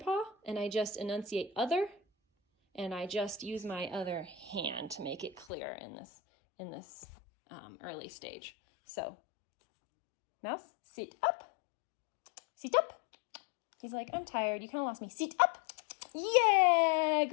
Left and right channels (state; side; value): drops out; right; at 5.5 s